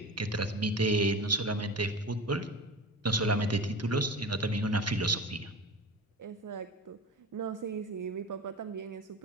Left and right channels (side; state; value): both; normal; correlation 0.32